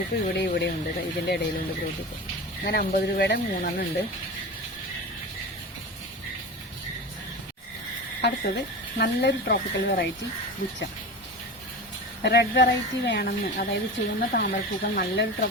ഇവിടെയും ഉണ്ട്. ഇതിൻ്റെ ഇടയിലുണ്ട് ഗ്രോട്ടിപ്പ്. അങ്ങനെ 50 രൂപയുടെ 3 എണ്ണം ഉണ്ട്. അടുത്തത് നല്ലൊരു ട്രോപ്പിക്കൽ വെറൈറ്റി ബുച്ച. റെഡ് വെറൈറ്റി വേണമെന്ന്, അതായത് ചുവന്ന താമരപ്പൂക്കൾ നല്ലൊരു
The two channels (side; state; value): both; normal; correlation 0.29